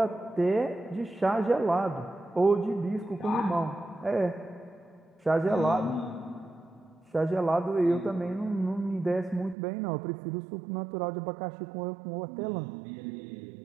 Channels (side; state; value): left; drops out; at 9.6 s